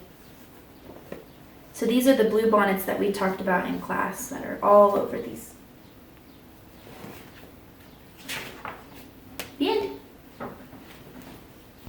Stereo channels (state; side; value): identical; both; correlation 1.00